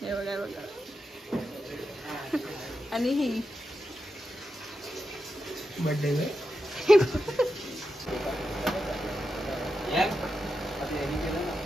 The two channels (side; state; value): both; normal; correlation 0.88